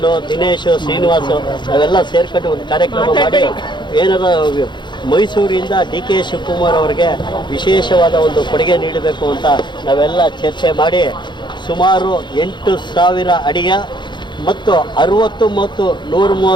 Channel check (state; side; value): late; right; 0.22 ms